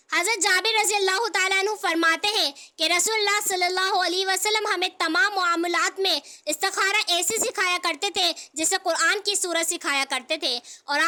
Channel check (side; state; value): both; identical; correlation 1.00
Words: حضرت جابر رضی اللہ تعالیٰ عنہ فرماتے ہیں کہ رسول اللہ صلی اللہ علیہ وسلم ہمیں تمام معاملات میں استخارہ ایسے سکھایا کرتے تھے جیسے قرآن کی سورت سکھایا کرتے تھے، اور